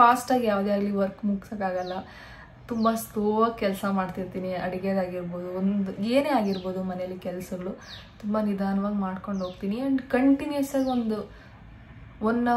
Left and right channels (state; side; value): identical; both; correlation 1.00